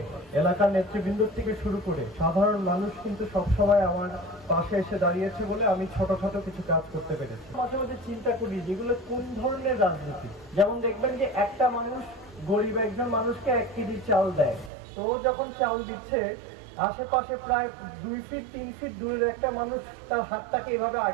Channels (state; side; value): drops out; left; at 14.7 s